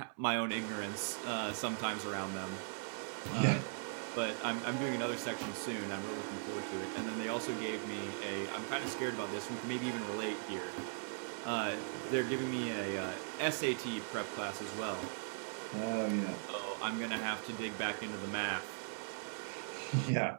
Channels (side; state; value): left; silent; 52 dB below the other